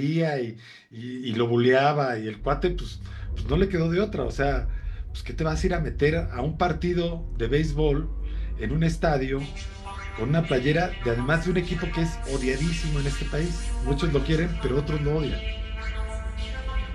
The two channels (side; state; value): both; identical; correlation 1.00